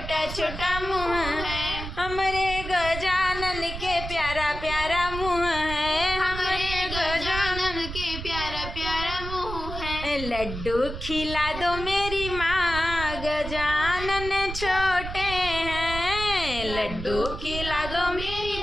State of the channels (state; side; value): noise; right; rumble, 8 dB below the sound